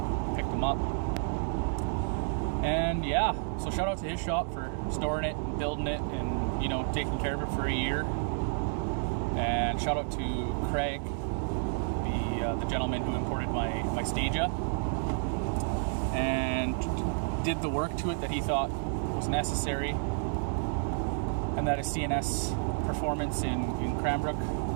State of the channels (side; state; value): left; silent; 55 dB below the other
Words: picked them up. And yeah, so shout out to his shop for storing it and building it and taking care of it for a year. And shout out to Craig, the gentleman who imported my Stagea and did the work to it that he thought was necessary, and that is CNS Performance in Cranbrook.